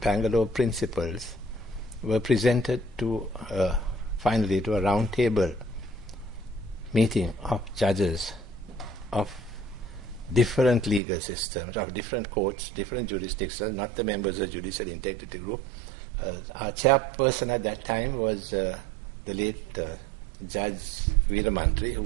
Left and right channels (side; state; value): left; drops out; at 11.0 s